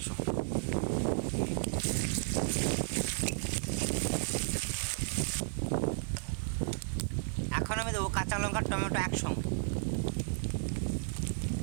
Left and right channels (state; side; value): silent; left; digital silence